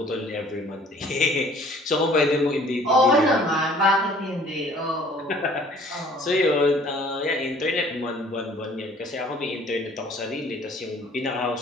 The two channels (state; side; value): normal; both; correlation 0.53